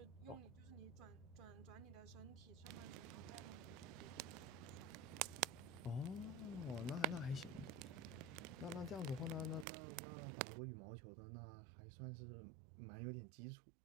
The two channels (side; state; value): left; drops out; at 9.7 s